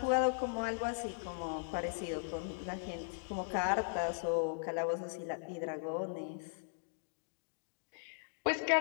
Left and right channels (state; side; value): silent; right; digital silence